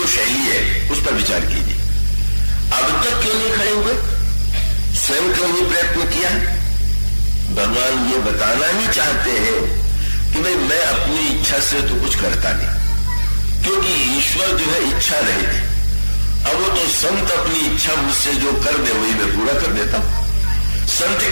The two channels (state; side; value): inverted; both; correlation -1.00